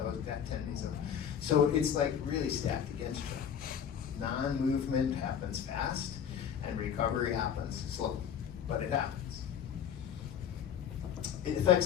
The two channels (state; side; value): quieter; right; 8.5 dB